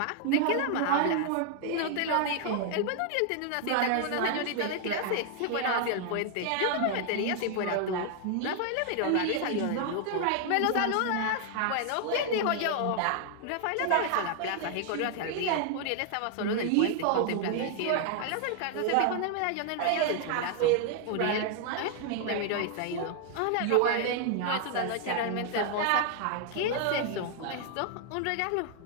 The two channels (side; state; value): both; different; correlation 0.00